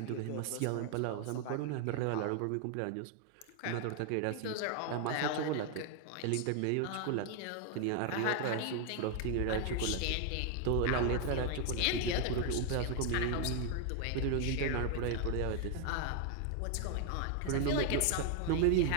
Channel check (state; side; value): different; both; correlation 0.00